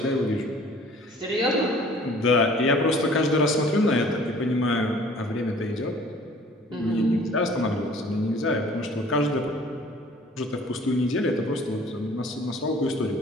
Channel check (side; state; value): both; normal; correlation 0.51